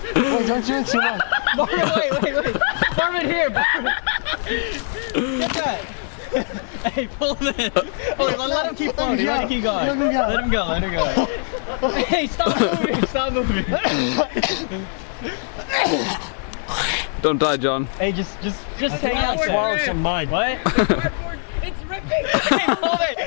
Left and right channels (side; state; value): right; silent; digital silence